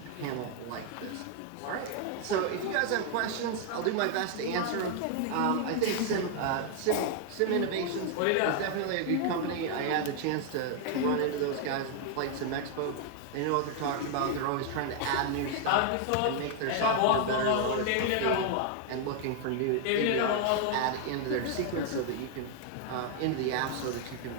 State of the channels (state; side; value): different; both; correlation 0.00